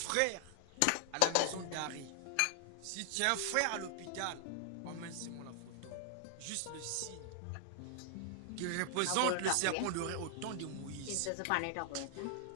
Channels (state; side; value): different; both; correlation 0.00